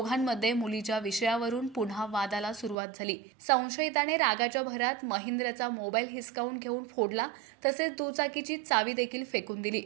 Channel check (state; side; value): drops out; left; at 2.8 s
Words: मुलीच्या विषयावरून पुन्हा वादाला सुरुवात झाली। संशयिताने रागाच्या भरात महेंद्रचा मोबाईल हिसकावून घेऊन फोडला, तसेच दुचाकीची चावी देखील फेकून दिली।